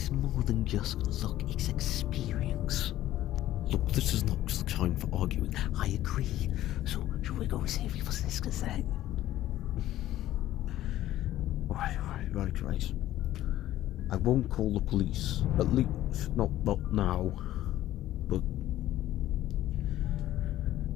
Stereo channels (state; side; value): quieter; right; 13.9 dB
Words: more than just luck. It's experience. Look, this is not the time for arguing. I agree. So, should we go and see if your sister's there? Right. I won't call the police. At least, not now. But...